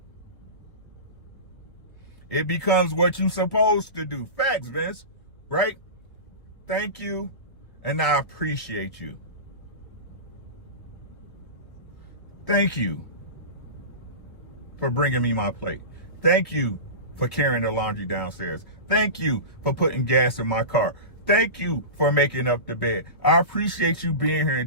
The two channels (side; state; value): right; late; 1.3 ms